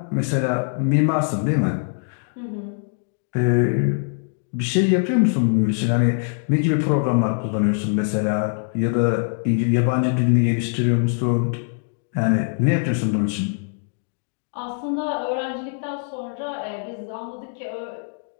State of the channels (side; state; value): right; silent; 59 dB below the other